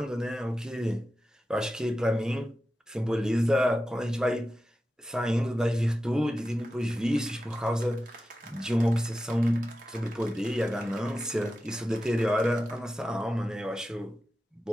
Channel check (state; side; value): normal; both; correlation 0.93